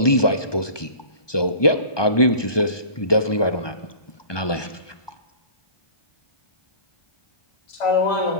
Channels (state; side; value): late; right; 1.2 ms